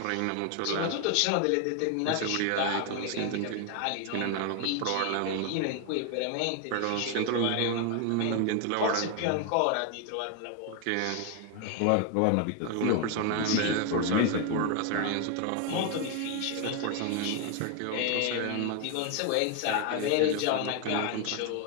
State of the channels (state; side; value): different; both; correlation 0.01